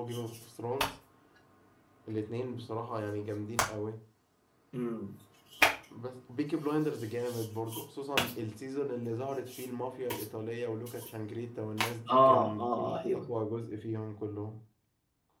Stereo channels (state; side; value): identical; both; correlation 1.00